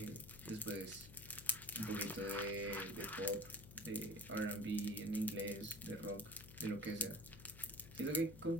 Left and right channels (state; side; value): noise; left; hum, 15 dB below the sound